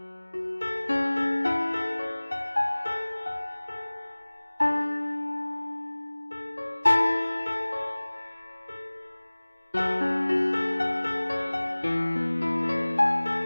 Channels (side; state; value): both; inverted; correlation -1.00